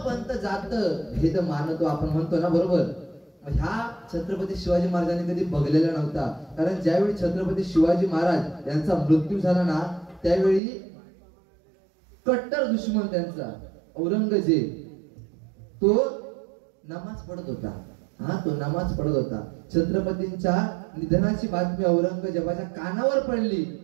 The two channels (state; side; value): drops out; left; at 10.6 s